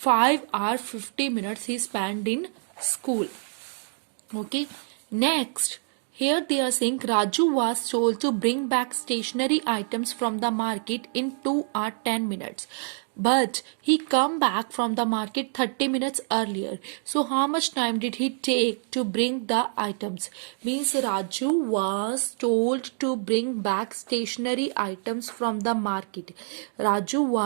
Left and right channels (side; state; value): left; silent; 57 dB below the other